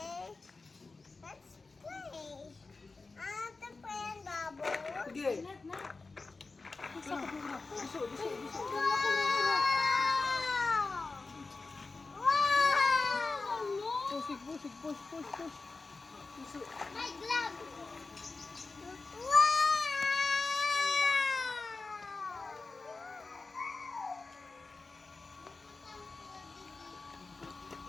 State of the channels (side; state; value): right; quieter; 3.8 dB